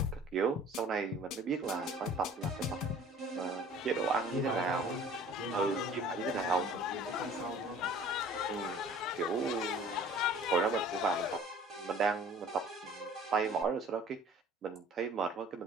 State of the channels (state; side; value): normal; both; correlation 0.48